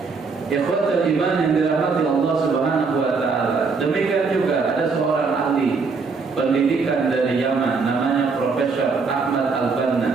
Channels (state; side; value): quieter; left; 4.7 dB